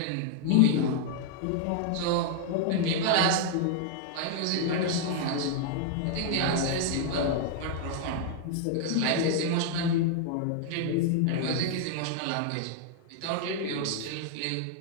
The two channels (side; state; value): both; different; correlation 0.00